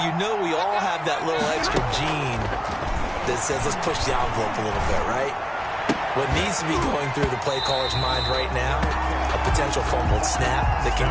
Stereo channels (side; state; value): both; identical; correlation 1.00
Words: know we all have that little extra gene that says let's push the envelope a little bit, right? What needs to be going through the play caller's mind right now, a potential fumbled snap that